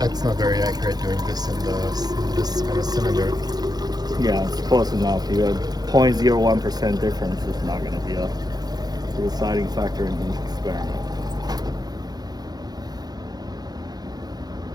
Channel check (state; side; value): late; left; 0.19 ms